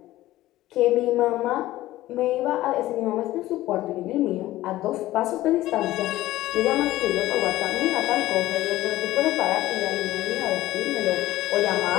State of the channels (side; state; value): right; quieter; 15.8 dB